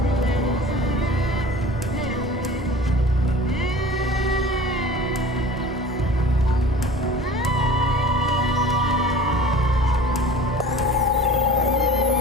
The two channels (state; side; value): normal; both; correlation 0.41